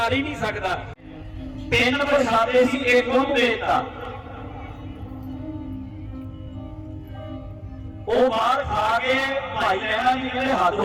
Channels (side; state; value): both; identical; correlation 1.00